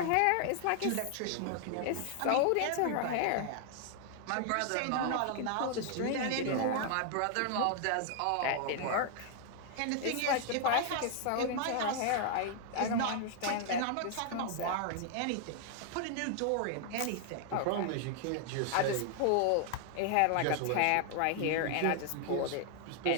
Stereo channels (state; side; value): different; both; correlation 0.00